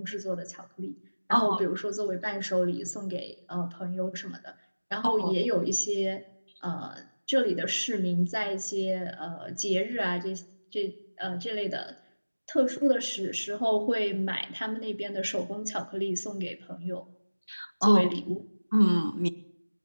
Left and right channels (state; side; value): inverted; both; correlation -1.00